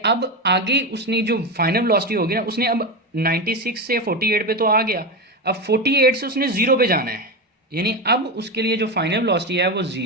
आगे उसने जो फाइनल वेलोसिटी होगी ना, उसने अब 96 से 48 पे तो आ गया, अब 48 से उसने 0 पे जाना है, यानी अब उसके लिए जो फाइनल वेलोसिटी है वो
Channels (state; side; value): normal; both; correlation 0.17